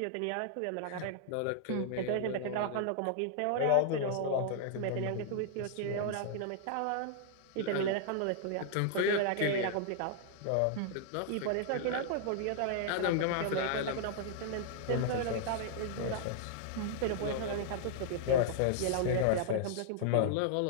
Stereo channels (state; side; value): different; both; correlation -0.01